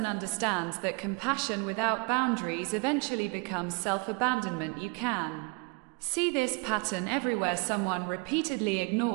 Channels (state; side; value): quieter; left; 31.9 dB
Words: understands that compassion without boundaries eventually becomes self-abandonment. You can see this pattern everywhere. Someone repeatedly